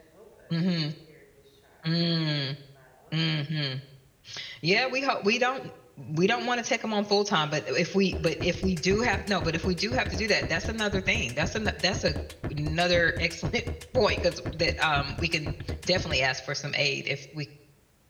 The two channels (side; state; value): both; identical; correlation 1.00